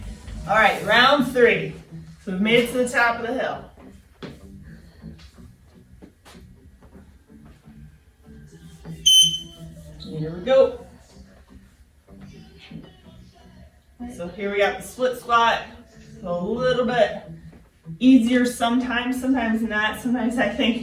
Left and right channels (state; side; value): identical; both; correlation 1.00